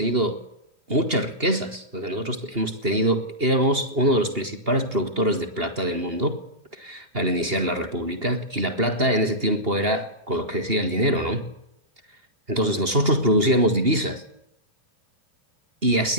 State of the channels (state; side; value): late; left; 2.8 ms